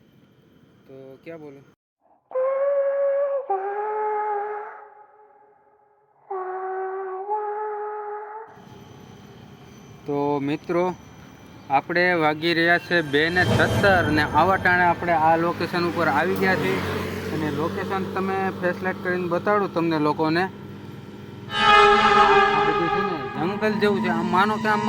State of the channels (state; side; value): identical; both; correlation 1.00